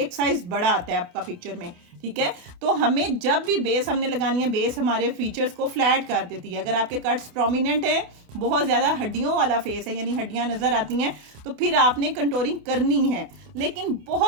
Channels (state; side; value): late; left; 28 ms